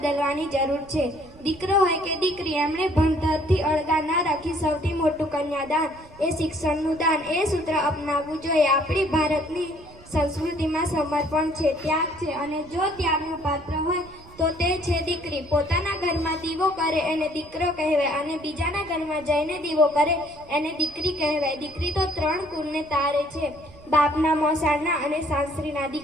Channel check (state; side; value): noise; right; rumble, 23 dB below the sound